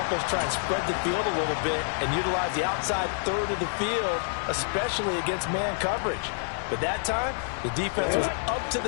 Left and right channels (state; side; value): silent; right; 60 dB below the other